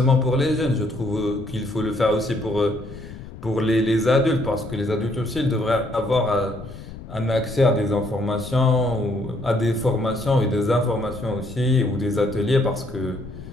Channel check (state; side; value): noise; left; rumble, 14 dB below the sound